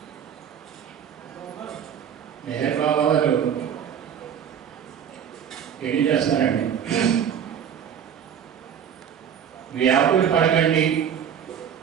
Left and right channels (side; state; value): left; quieter; 8.5 dB